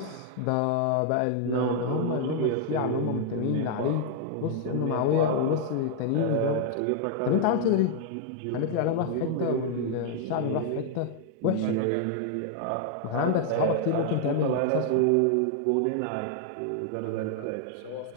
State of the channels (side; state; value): both; different; correlation 0.00